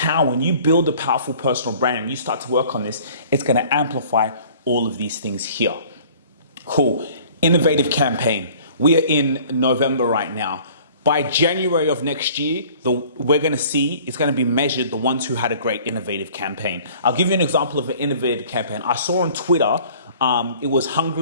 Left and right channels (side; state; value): both; inverted; correlation -0.50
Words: when you build a powerful personal brand and you start to work on this, it's going to amplify all of these things here. Cool. Innovative campaign. We are in November right now. By January of next year, we're going to see, it's going to be measured, the ones who had a great innovative campaign. I'll give you an example of an innovative campaign. I saw on Twitter, it was